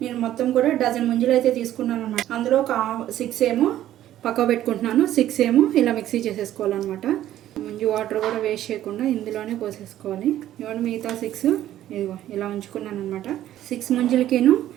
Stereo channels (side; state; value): left; quieter; 12.7 dB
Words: నేను మొత్తం కూడా డజన్ ముంజలు అయితే తీసుకున్నాను అనమాట. అందులో ఒక 6 ఏమో పక్క పెట్టుకుంటున్నాను, 6 ఏమో ఇలా మిక్సీ చేసేసుకోవాలన్నమాట. ముంజు వాటర్ కూడా వేస్ట్ చేయకుండా ఇందులోనే పోసేసుకోవాలి. ఇవన్నీ మిగతా 6 ఇదిగో ఇలా ఉంచుకున్నాను అనమాట. 6 ముంజలకిను